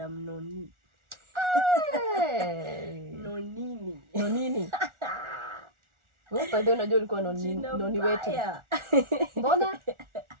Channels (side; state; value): left; late; 1.4 ms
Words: Noni. Hey. Nonini. Wewe bado unajua ulikuwa noni wetu. Mbona?